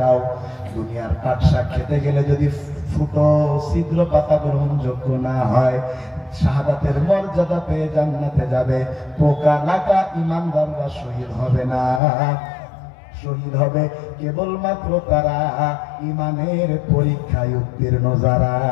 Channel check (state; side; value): drops out; right; at 12.0 s